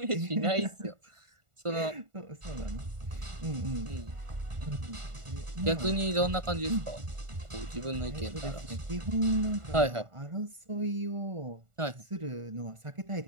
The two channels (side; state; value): left; late; 1.4 ms